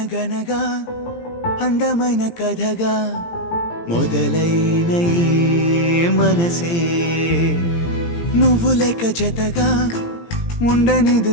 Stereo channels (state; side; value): late; right; 17 ms